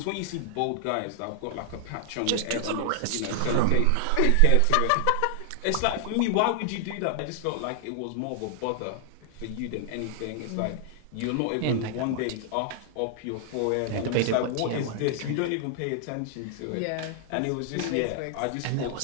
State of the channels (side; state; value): both; different; correlation 0.00